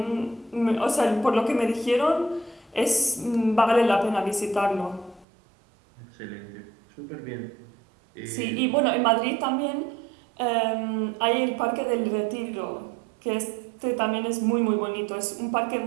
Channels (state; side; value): drops out; left; at 5.2 s